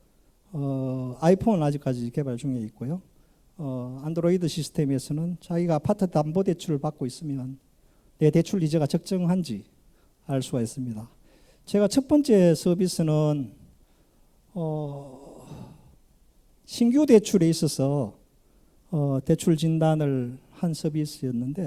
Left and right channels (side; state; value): both; identical; correlation 1.00